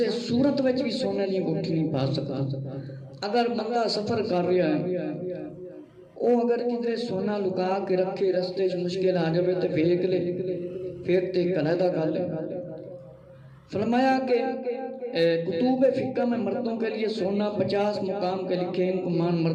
صورت وچ بھی سونے دی انگوٹھی نہیں پا سکتا۔ اگر بندہ سفر کر رہا ہے او اگر کدھر سونا لکا کے رکھے رستے مشکل آ جائے تو پھینک لے، پھر تے علیحدہ کر لے۔ فرمایا کہ کتب فقہ میں مردوں کے لیے سونا 50 مقام کے لکھے، ان کو مان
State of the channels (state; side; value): identical; both; correlation 1.00